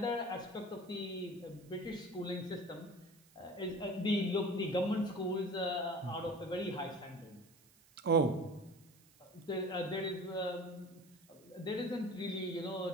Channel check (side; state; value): right; noise; hiss, 27 dB below the sound